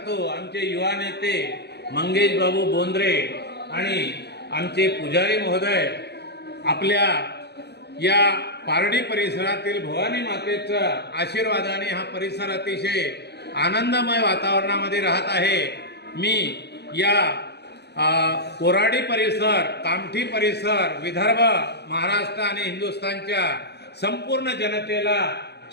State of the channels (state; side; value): late; right; 0.49 ms